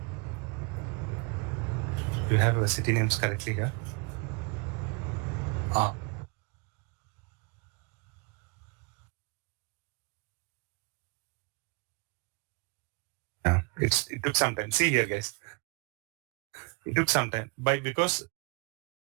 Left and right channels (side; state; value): left; quieter; 30.1 dB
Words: Do you have city names correctly here? Ah. Yeah. It took some time. See here, guys. It took some time because